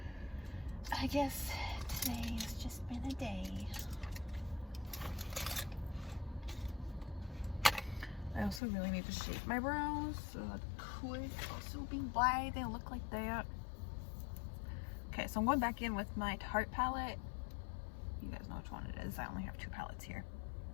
I guess today has just been a day. I also really need to shape my brows, so that could also be why they look like that. Okay, so I'm going back in with my Tarte palette. You guys know which one it is. I only have 2 palettes here.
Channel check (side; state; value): right; drops out; at 8.6 s